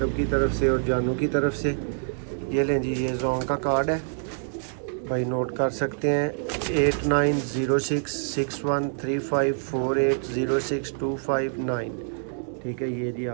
की तरफ से और जानू की तरफ से। ये लें जी, ये जोंग का कार्ड है भाई, नोट कर सकते हैं। 8906613548062559। ठीक है, ये जी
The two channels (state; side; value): silent; left; 61 dB below the other